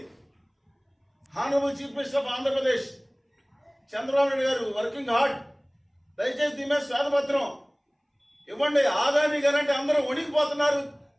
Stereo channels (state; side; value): identical; both; correlation 1.00